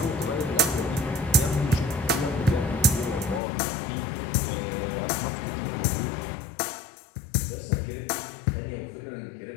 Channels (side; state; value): right; drops out; at 3.4 s